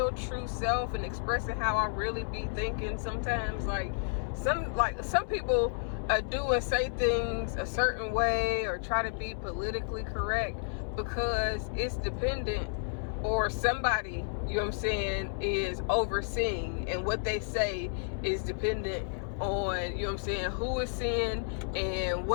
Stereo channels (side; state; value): right; silent; 57 dB below the other